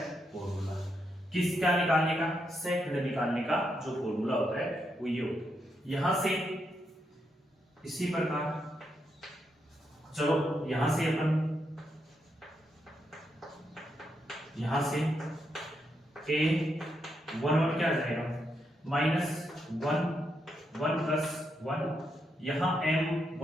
फॉर्मूला, किसका निकालने का, सेकंड निकालने का जो फॉर्मूला होता है वो ये होता है। यहां से इसी प्रकार चलो यहां से अपन यहां से a11 क्या आ जाएगा -1 1 + 1 यहाँ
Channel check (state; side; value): normal; both; correlation 0.81